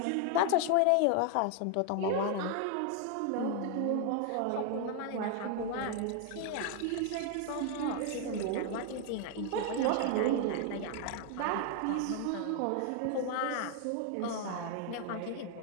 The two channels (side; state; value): both; different; correlation 0.00